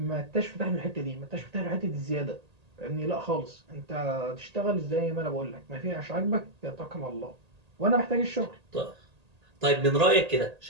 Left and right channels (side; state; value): left; late; 1.8 ms